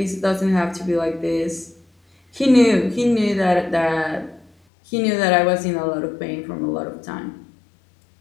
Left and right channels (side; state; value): right; drops out; at 4.5 s